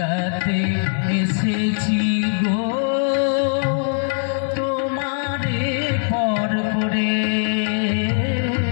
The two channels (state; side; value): silent; right; 58 dB below the other